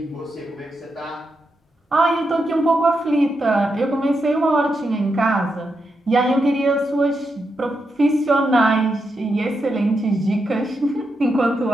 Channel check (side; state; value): both; normal; correlation 0.85